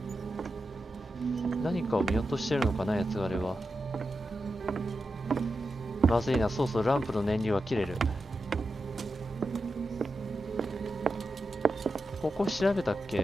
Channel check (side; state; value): both; normal; correlation 0.89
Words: 何かを見落としてるのかな、八つ枯れは。まずいな、そうそう、ランプの燃料は切れる。ここ調べたっ